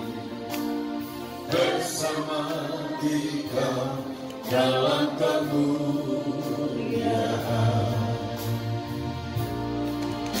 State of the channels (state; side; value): identical; both; correlation 1.00